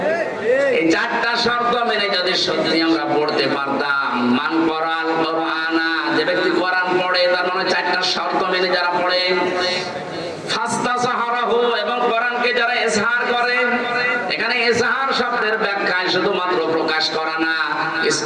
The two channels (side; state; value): both; identical; correlation 1.00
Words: এই চারটা শর্ত মেনে যদি সত্যি আমরা পড়তে পারতাম, মান কোরআন কোরআনা, যে ব্যক্তি কোরআন পড়ে তার মানে চারটা শর্ত মেনে যারা পড়ে, ফাস্তাসাহারাহু, এবং কোরআনকে যারা ইজহার করে, এখানে ইজহার শব্দের ব্যাখ্যায় শুধুমাত্র প্রকাশ করা না,